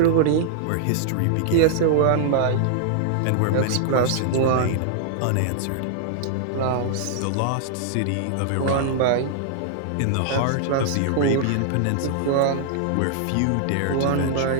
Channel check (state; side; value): different; both; correlation -0.01